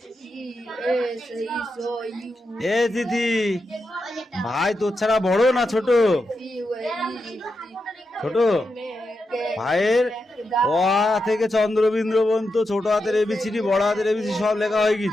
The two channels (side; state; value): both; normal; correlation 0.87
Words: এ দিদি ভাই তোর ছাড়া বড় না ছোট? ছোট ভাইয়ের অ থেকে চন্দ্রবিন্দু পর্যন্ত ছোট হাতের এবিসিডি বড় হাতের এবিসিডি সব লেখা হয়ে